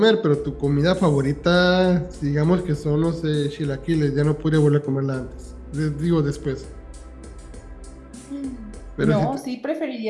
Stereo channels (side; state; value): both; identical; correlation 1.00